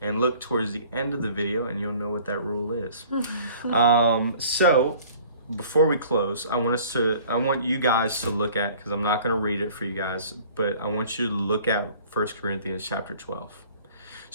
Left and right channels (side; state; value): both; inverted; correlation -0.50